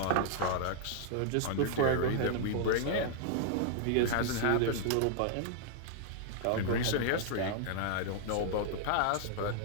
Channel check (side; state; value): both; different; correlation -0.01